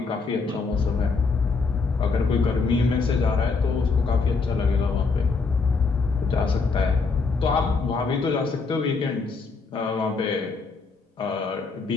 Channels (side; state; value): right; quieter; 4.5 dB